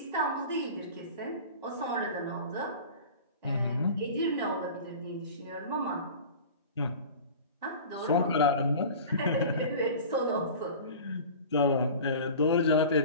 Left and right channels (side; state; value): both; inverted; correlation -0.37